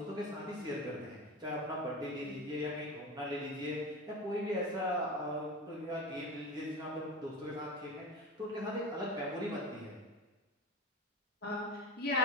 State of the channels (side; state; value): both; normal; correlation 0.29